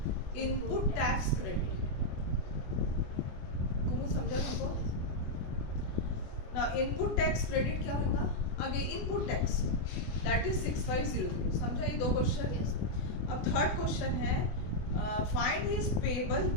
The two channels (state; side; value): late; right; 24 ms